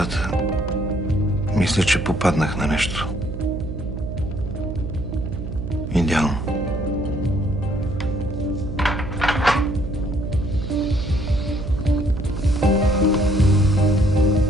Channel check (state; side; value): noise; right; hum, 7 dB below the sound